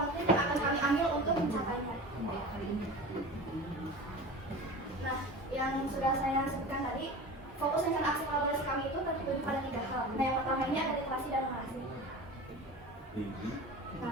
yang akan kami ambil untuk mencapainya. Nah, yang sudah saya sebutkan tadi, fokus rencana aksi kolaborasi kami itu tertuju pada 3 hal. Nah, yang pertama ini ada literasi dan numerasi.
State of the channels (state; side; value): normal; both; correlation 0.34